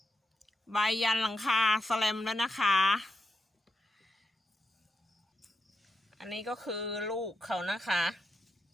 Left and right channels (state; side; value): normal; both; correlation 0.85